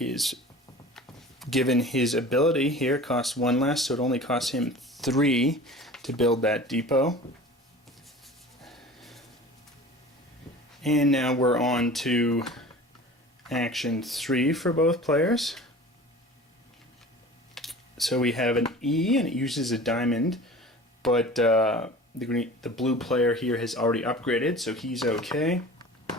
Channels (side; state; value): both; normal; correlation 0.40